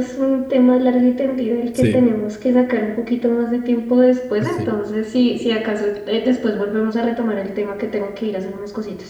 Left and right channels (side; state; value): both; identical; correlation 1.00